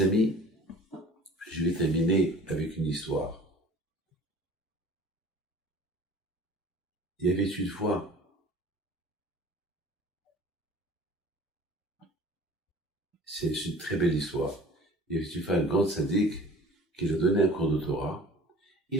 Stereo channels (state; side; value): normal; both; correlation 0.46